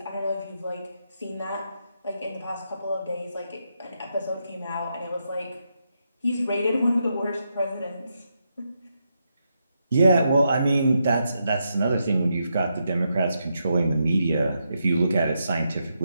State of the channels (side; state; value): both; inverted; correlation -0.83